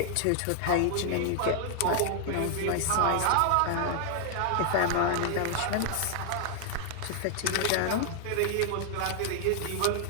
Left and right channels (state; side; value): different; both; correlation 0.00